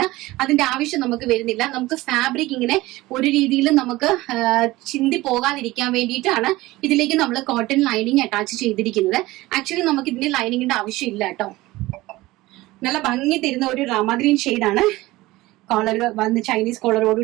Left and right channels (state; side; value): quieter; left; 18.9 dB